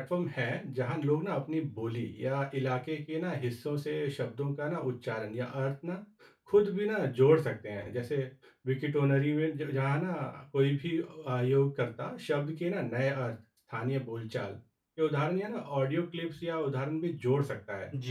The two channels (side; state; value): both; identical; correlation 1.00